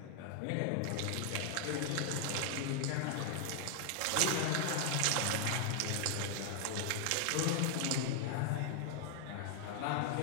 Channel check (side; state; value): both; different; correlation 0.00